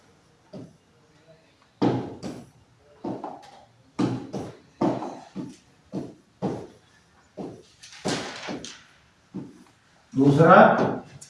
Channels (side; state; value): both; identical; correlation 1.00